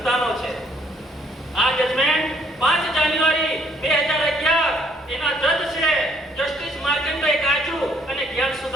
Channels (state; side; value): normal; both; correlation 0.65